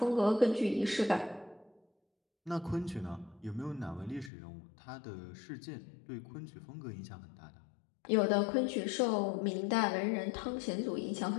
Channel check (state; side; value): drops out; right; at 4.3 s